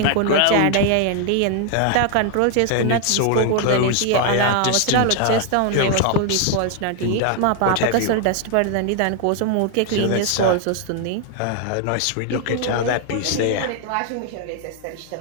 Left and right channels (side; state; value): both; different; correlation 0.00